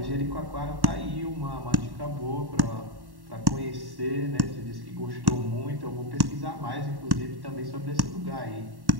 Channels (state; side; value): late; left; 1.1 ms